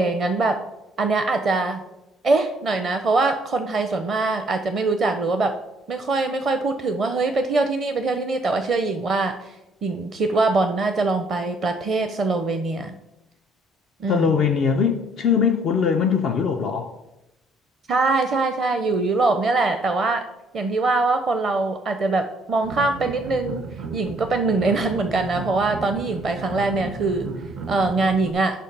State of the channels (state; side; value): normal; both; correlation 0.64